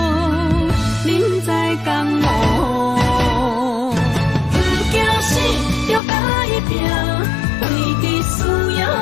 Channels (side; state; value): right; drops out; at 6.0 s